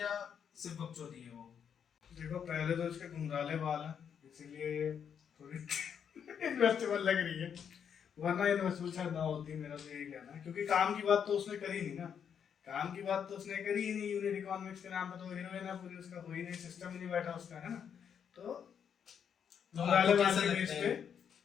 सिर्फ बकचोदी है वो। देखो, पहले तो इसके घुंघराले बाल हैं, इसीलिए थोड़ी इन्वेस्टेबल लग रही है, वरना इन्वेस्टेबल शायद ना होती। मेरा तो यही कहना है, क्योंकि काम की बात तो उसने करी नहीं ना। काम की बात तो उसने करी ही नहीं। यूनिट इकोनॉमिक्स के नाम पे तो हीरोइन है पूरी, उसका कोई नहीं, सिस्टम ही नहीं बैठा उसका, है ना। तो घुंघराले बाल के बेस पे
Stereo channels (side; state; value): right; quieter; 7.8 dB